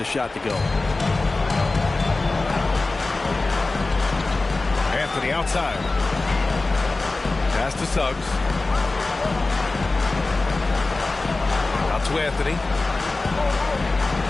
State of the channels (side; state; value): right; quieter; 3.3 dB